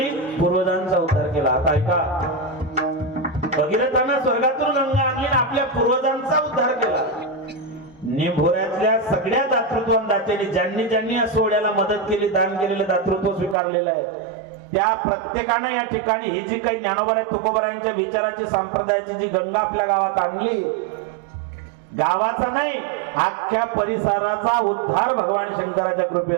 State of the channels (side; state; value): left; drops out; at 13.6 s